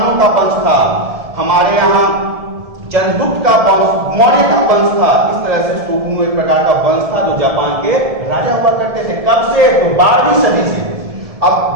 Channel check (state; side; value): late; left; 1.7 ms